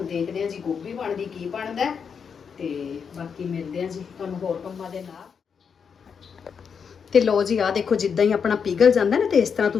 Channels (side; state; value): right; quieter; 6.5 dB